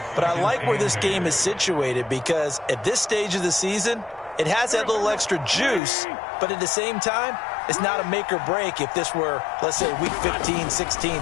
But I like where this game is situated because at this stage of the season, it has that little extra juice, but at the same time, it's not a make or break if this were, let's say, week 15,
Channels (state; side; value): drops out; right; at 5.8 s